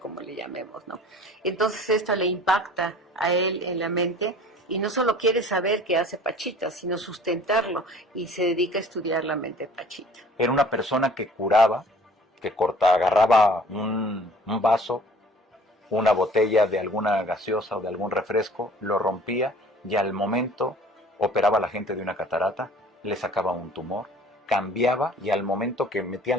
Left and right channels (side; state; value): both; normal; correlation 0.49